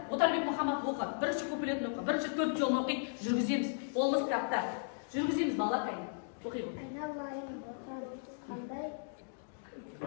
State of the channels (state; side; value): silent; right; digital silence